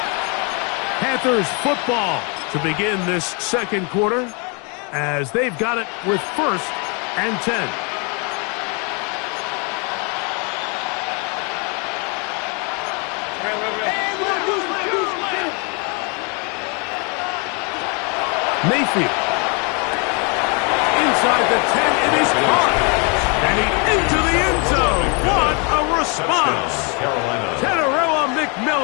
Panthers football to begin this second quarter as they've got it with 1st and 10. Mayfield. Inside the 10, it is caught. And he into the end zone. What a response. Teteroa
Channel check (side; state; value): right; quieter; 34.1 dB